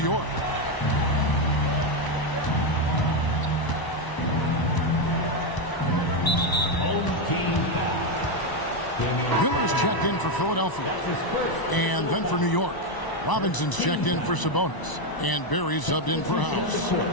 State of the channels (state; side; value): late; right; 1.0 ms